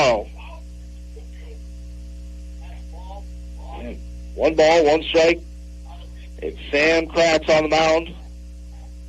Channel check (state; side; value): identical; both; correlation 1.00